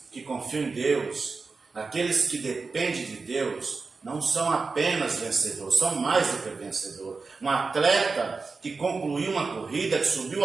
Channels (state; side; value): quieter; left; 4.3 dB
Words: que confiam em Deus, aqueles que dependem de Deus, não são apenas vencedores, são mais do que vencedor. Um atleta que concluiu uma corrida, que subiu